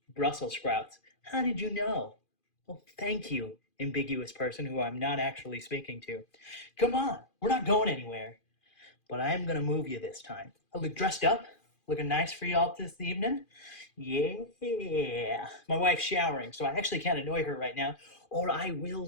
Brussels sprouts. How did you know? Well, thank you, ambiguous person who I'm not actually speaking to. Come on, we're not going anywhere. But I am going to move you this time. I look dressed up, looking nice for y'all this evening. Yeah. My wife's showering, so I actually can't annoy her right now, or I will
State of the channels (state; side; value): late; right; 2.4 ms